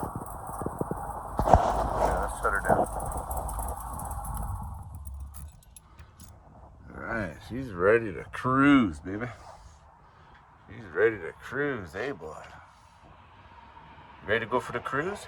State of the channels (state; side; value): identical; both; correlation 1.00